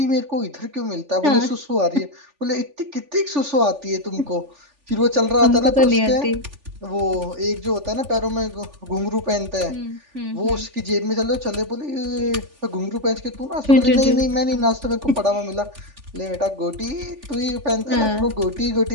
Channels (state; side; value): late; left; 3.4 ms